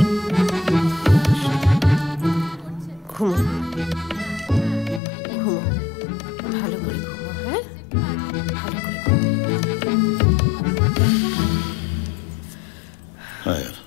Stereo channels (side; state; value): right; drops out; at 5.0 s